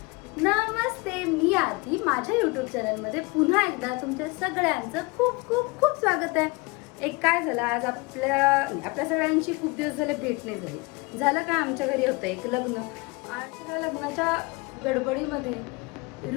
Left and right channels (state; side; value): quieter; right; 26.0 dB